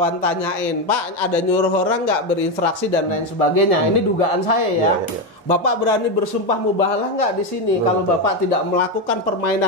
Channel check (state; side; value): normal; both; correlation 0.10